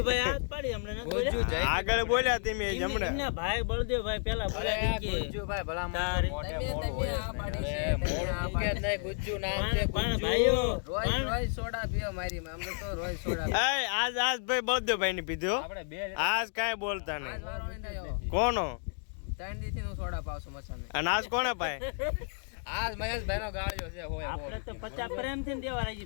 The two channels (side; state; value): right; silent; 57 dB below the other